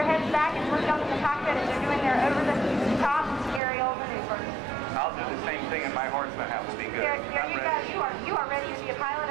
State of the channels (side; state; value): left; drops out; at 3.6 s